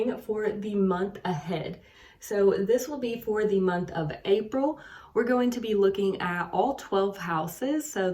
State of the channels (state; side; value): identical; both; correlation 1.00